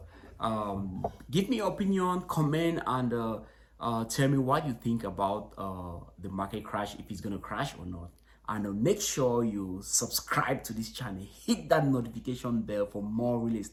give me your opinion, comment, and tell me what you think about the market crash, if it's gonna crash or not. And make sure you subscribe to this channel, hit that notification bell for more real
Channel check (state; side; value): identical; both; correlation 1.00